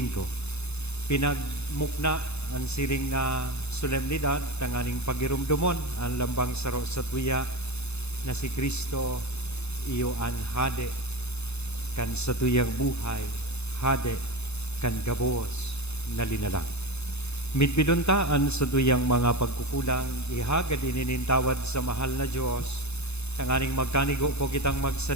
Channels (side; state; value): right; late; 0.80 ms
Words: Pinagmukna ang siring na solemnidad, tanganing pagirumdumon, ang lambang saro sa tuya, na si Kristo, iyo ang hade, kan sa tuyang buhay, hade, kan gabos, na linalang. Mitbiduntaan sa tuyang mga pagkukulang, ihagad ininintawad sa mahal na Diyos, tanganing magkanigo po kitang